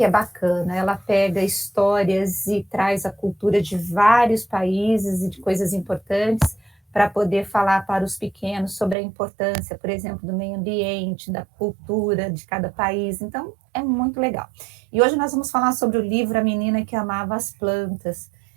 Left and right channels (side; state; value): left; drops out; at 9.0 s